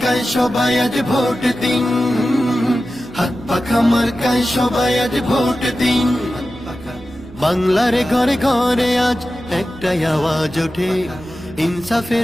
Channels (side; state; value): right; noise; hum, 21 dB below the sound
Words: সবাই আজ ভোট দিন, হাত পাখা মার্কায় সবাই আজ ভোট দিন। বাংলার ঘরে ঘরে আজ একটাই আওয়াজ ওঠে,